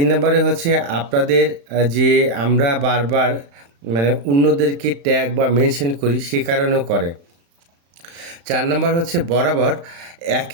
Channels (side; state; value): left; late; 35 ms